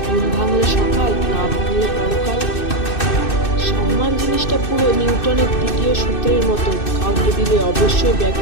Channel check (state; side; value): late; right; 2.6 ms